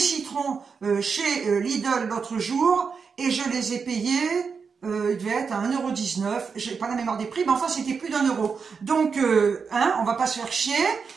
chez Lidl l'autre jour et je les ai payés... il devait être à 1,19 €, j'ai pas la mémoire des prix, mais enfin c'était plus d'1 €. Donc, hein, on va pas se faire chier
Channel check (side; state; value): left; quieter; 5.6 dB